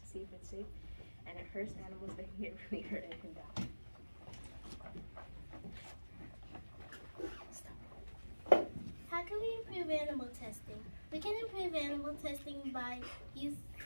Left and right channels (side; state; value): both; inverted; correlation -1.00